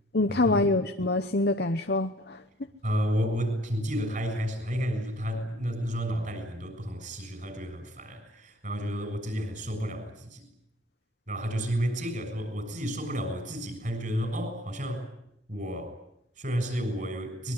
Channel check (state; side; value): normal; both; correlation 0.55